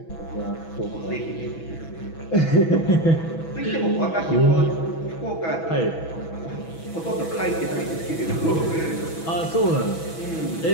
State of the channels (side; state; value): right; late; 6.1 ms